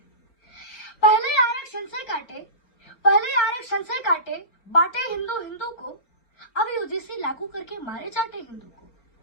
पहले आरक्षण से काटे बांटे हिंदू हिंदू को, अब यूजीसी लागू करके मारे चाटे हिंदू को।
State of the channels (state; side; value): late; right; 4.4 ms